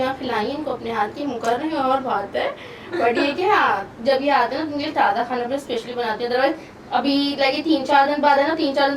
खिलाई इनको अपने हाथ की, मुकर रही हूँ और बात है, बट ये कि हाँ जब ये आते हैं ना उनके लिए ताज़ा खाना भी स्पेशली बनाती है, अदरवाइज अभी लगे 3-4 दिन बाद है ना, 3-4 दिन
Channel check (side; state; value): both; identical; correlation 1.00